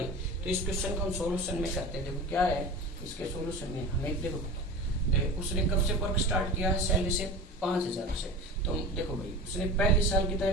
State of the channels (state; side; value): normal; both; correlation 0.32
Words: तो इस क्वेश्चन को हम सॉल्यूशन में करते हैं। देखो क्या है इसके सॉल्यूशन में, हमें देखो उसने कब से वर्क स्टार्ट किया है सैलरी से 5,000 से, तो देखो भाई उसने पहले साल कितना